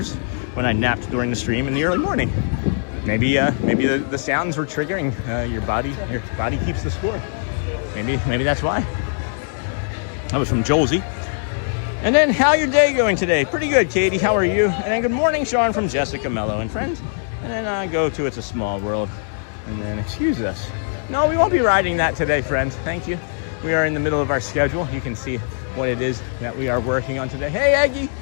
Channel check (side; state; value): right; silent; digital silence